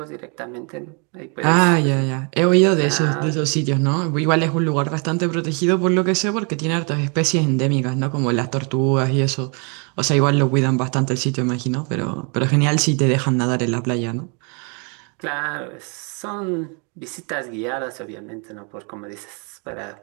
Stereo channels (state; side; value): quieter; left; 35.9 dB